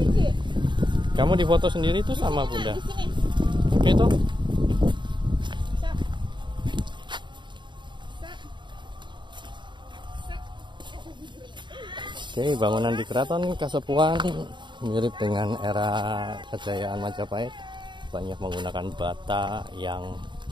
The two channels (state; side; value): late; left; 0.23 ms